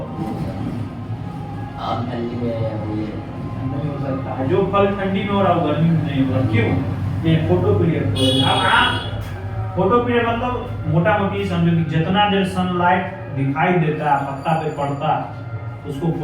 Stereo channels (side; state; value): both; identical; correlation 1.00